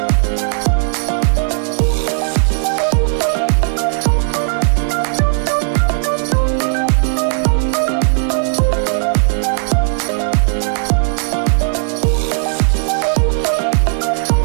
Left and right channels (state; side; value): silent; left; digital silence